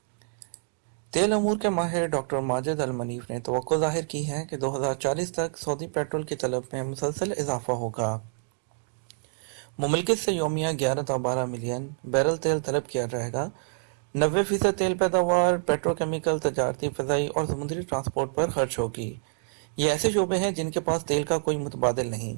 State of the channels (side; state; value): left; silent; digital silence